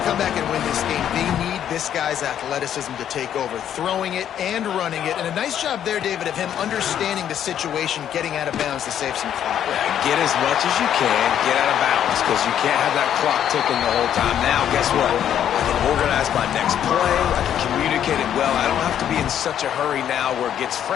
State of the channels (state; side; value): quieter; right; 9.9 dB